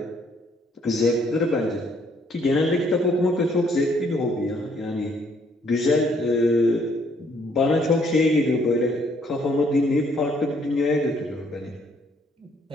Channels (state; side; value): normal; both; correlation 0.66